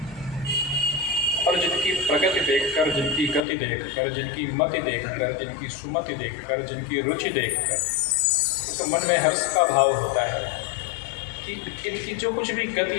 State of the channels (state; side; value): drops out; right; at 3.4 s